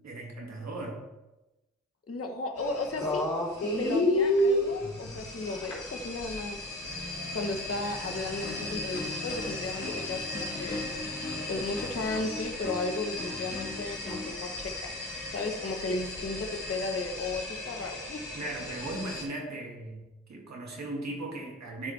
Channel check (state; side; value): normal; both; correlation 0.32